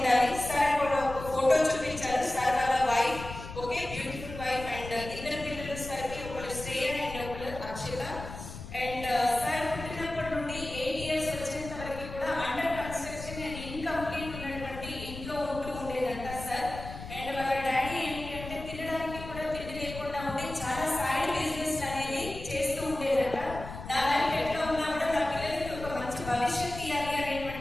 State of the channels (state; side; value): noise; left; rumble, 11 dB below the sound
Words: సార్ కూడా ఒక ఫోటో చూపించారు. సార్ వాళ్ళ wife okay beautiful wife and ఇద్దరు పిల్లలు సార్ కి ఒకరు శ్రేయ అండ్ ఒకరు అక్షత. అండ్ సార్ పుట్టినప్పటి నుండి 8 years వచ్చేంత వరకు కూడా అండర్ కన్స్ట్రక్షన్ అండ్ ఇన్కంప్లీట్ ఉన్నటువంటి ఇంట్లో